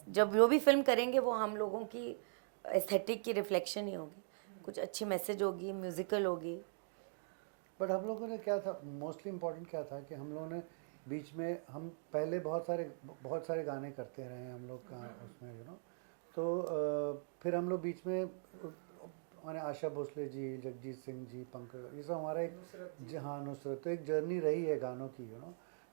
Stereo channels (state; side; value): silent; left; digital silence